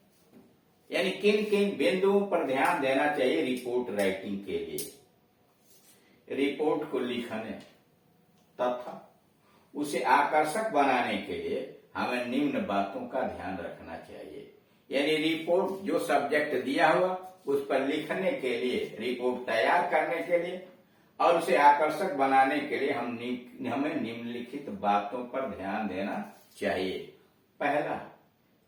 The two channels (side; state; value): both; identical; correlation 1.00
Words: यानी किन किन बिंदुओं पर ध्यान देना चाहिए रिपोर्ट राइटिंग के लिए। रिपोर्ट को लिखने तथा उसे आकर्षक बनाने के लिए हमें निम्न बातों का ध्यान रखना चाहिए। यानी रिपोर्ट जो सब्जेक्ट दिया हुआ उस पर लिखने के लिए, रिपोर्ट तैयार करने के लिए और उसे आकर्षक बनाने के लिए हमें निम्नलिखित बातों पर ध्यान देना चाहिए। पहला,